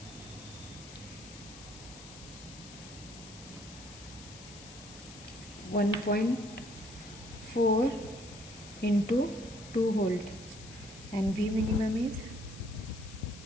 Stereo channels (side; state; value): left; noise; hiss, 16 dB below the sound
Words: (1.4) into 2 volt and V minimum is